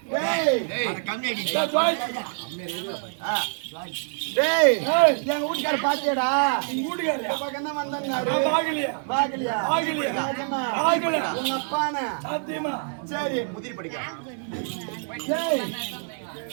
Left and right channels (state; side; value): silent; left; digital silence